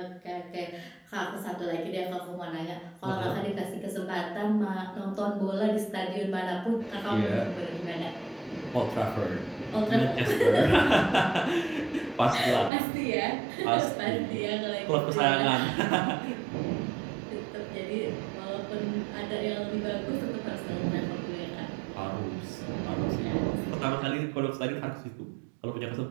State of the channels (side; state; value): left; drops out; at 12.7 s